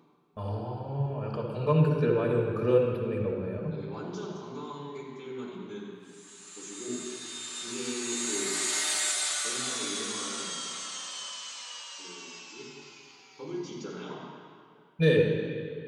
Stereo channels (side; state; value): both; identical; correlation 1.00